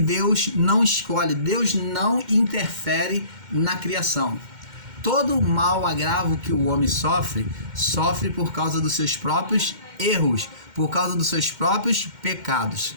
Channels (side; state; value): left; late; 2.1 ms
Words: não escolhe, Deus não interfere na criação. Todo mal agravo que o homem sofre por causa dos seus próprios erros, por causa dos seus próprios pecados.